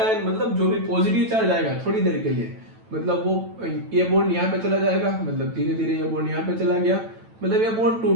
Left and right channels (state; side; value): late; left; 9.0 ms